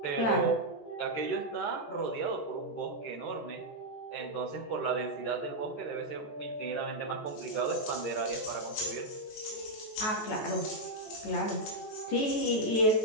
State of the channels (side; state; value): right; late; 14 ms